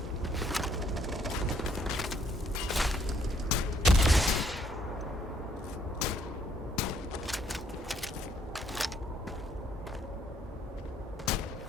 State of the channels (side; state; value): both; normal; correlation 0.68